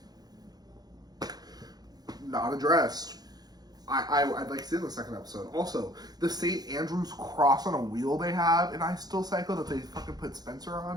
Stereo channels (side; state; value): left; late; 0.19 ms